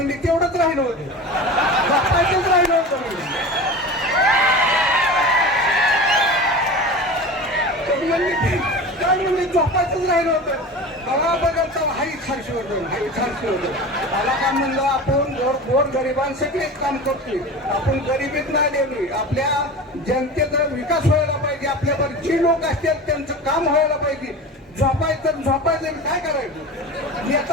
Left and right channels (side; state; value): both; normal; correlation 0.32